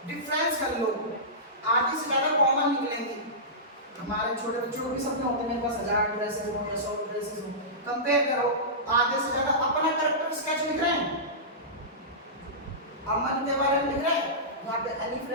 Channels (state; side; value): normal; both; correlation -0.18